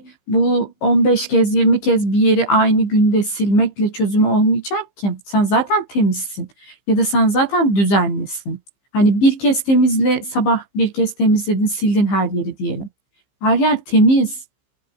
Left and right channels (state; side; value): late; right; 15 ms